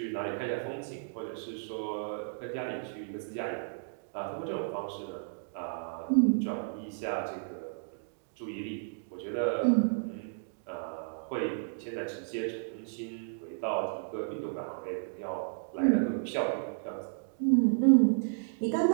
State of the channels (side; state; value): left; silent; digital silence